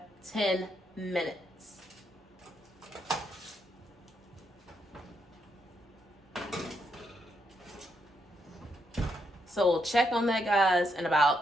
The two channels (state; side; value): normal; both; correlation 0.78